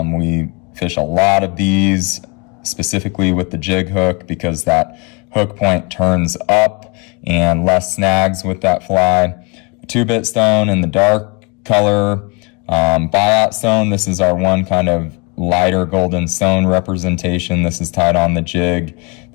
fish a lot of these specifically with the jig hook because that hook point turns up and less snags with that fly. 2-bit stone in the dark color, buyout stone. This is our one kind of lighter golden stone representation. This is tied on the jig.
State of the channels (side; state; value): right; quieter; 29.8 dB